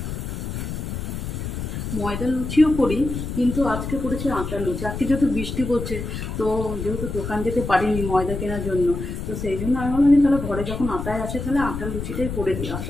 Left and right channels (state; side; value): noise; left; rumble, 5 dB below the sound